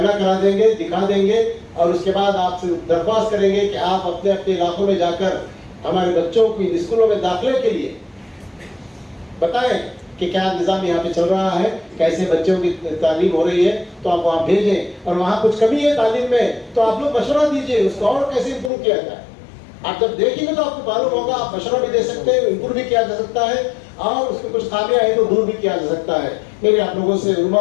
करा देंगे, दिखा देंगे, और उसके बाद आपसे दरख्वास्त करेंगे कि आप अपने अपने इलाकों में जाकर हमारे बच्चों को स्कूलों में दाखिले के लिए बताएं कि क्या निज़ाम यहाँ पे चल रहा है, कैसे बच्चों की तालीम हो रही है। तो आप वहाँ भेजें, और वहाँ कुछ कमी है तालीम में तो आप लोग मशवरा दीजिए, उसको और कैसे इम्प्रूव किया जाए। आप जब देखेंगे तो आपको मालूम होगा, आप मशवरा भी दे सकते हैं, इम्प्रूव भी किया जा सकता है, और उसमें कुछ खामियां है तो दूर भी किया जा सकता है। मेरे आप लोगों से, उलमा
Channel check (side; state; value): right; drops out; at 18.7 s